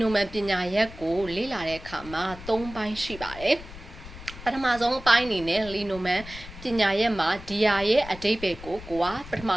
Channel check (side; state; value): left; noise; rumble, 15 dB below the sound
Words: နိုမန်ပညာရပ်ကိုလေ့လာတဲ့အခါမှာ၃ပိုင်းရှိပါတယ်ပထမဆုံးအပိုင်းအနေနဲ့လီနိုမန်ပညာရပ်မှာဒီယာရဲ့အဓိပ္ပာယ်ကိုကပထမ